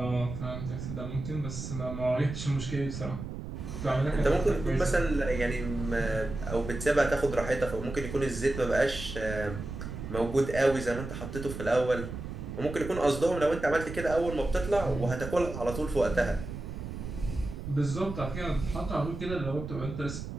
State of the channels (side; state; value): right; noise; rumble, 8 dB below the sound